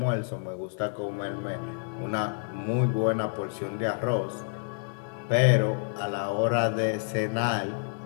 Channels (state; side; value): silent; right; digital silence